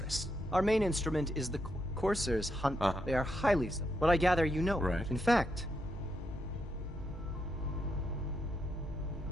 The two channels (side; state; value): both; normal; correlation 0.81